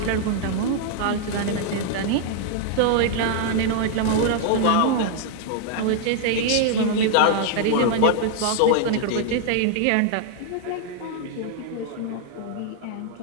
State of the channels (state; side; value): different; both; correlation 0.00